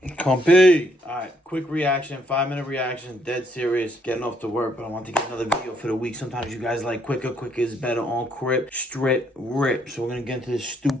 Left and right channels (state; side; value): normal; both; correlation 0.70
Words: Compy. Alright, quick reaction, 5-minute reaction, dead serious, getting off to work, but I want to get another video for the week. Sometimes you guys like quicker is better on Crip, Strip, Rip. So we're gonna get into this